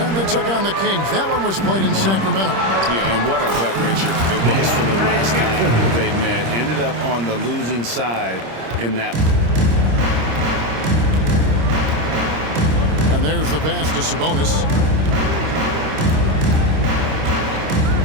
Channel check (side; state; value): left; late; 26 ms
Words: they took on the Kings. That one was played in Sacramento. Yeah, and what a gut wrencher it was for them last time they met. Ended up on the losing side in that one. And there's the pass to Sabonis.